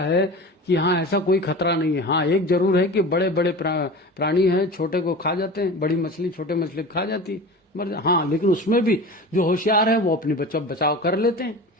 है कि हाँ ऐसा कोई खतरा नहीं है। हाँ एक जरूर है कि बड़े बड़े प्राणी हैं, छोटे को खा जाते हैं, बड़ी मछली छोटे मछली खा जाती है, मर जा। हाँ लेकिन उसमें भी जो होशियार है वो अपनी बचाव कर लेते हैं।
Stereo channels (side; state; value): both; normal; correlation 0.34